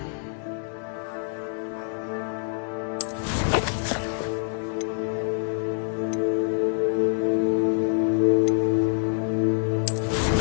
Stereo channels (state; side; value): silent; right; digital silence